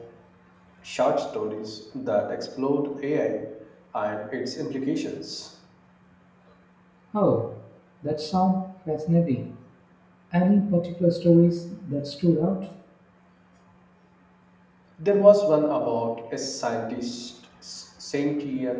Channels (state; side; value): identical; both; correlation 1.00